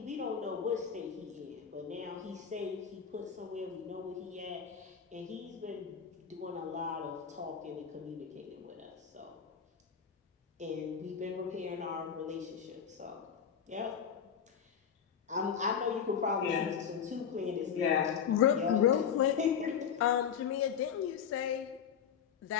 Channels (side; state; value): right; quieter; 7.6 dB